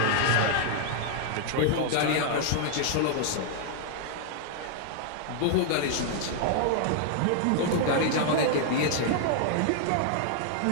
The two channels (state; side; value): different; both; correlation 0.00